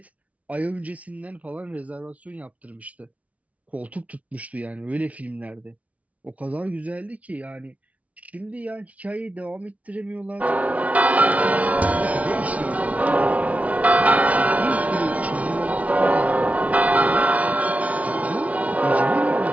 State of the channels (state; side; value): late; left; 0.068 ms